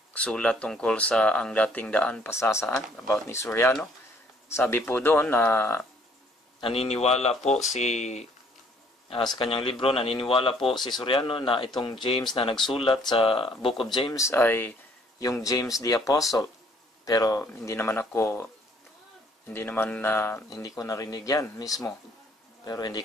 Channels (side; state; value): both; normal; correlation 0.62